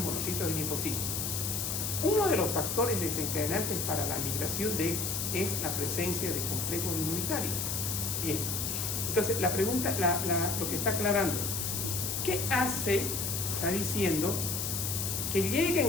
monocitos y linfocitos. Uno de los factores desencadenantes para la migración es la presencia de complejos inmunitarios. Bien, entonces la pregunta, lo que está aclarando, ¿qué hace? Está diciendo que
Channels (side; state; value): left; noise; hiss, 1 dB below the sound